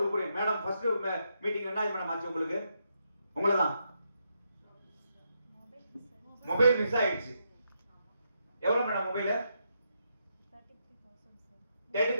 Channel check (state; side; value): inverted; both; correlation -0.81